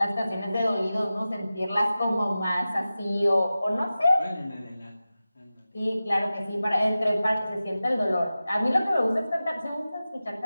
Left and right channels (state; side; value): inverted; both; correlation -0.95